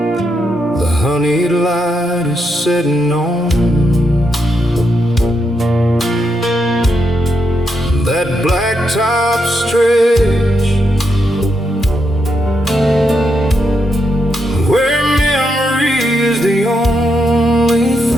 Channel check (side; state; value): both; normal; correlation 0.81